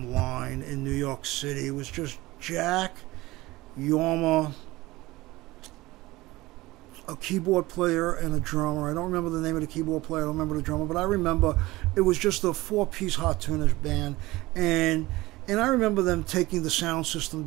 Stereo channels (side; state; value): left; quieter; 19.5 dB